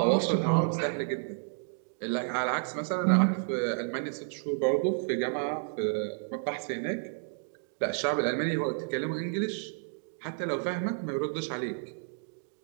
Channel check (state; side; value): silent; left; digital silence